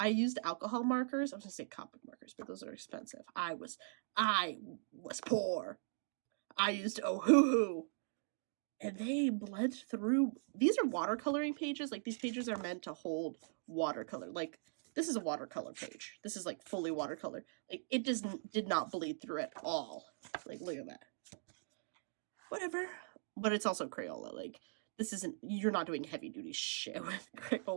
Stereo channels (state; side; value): silent; left; digital silence